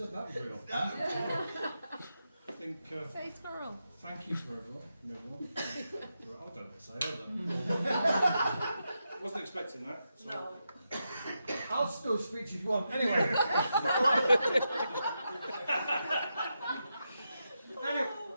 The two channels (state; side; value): inverted; both; correlation -0.86